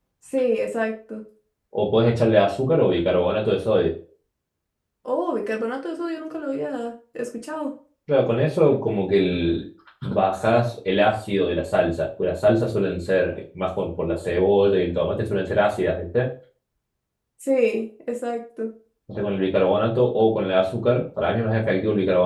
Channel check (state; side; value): identical; both; correlation 1.00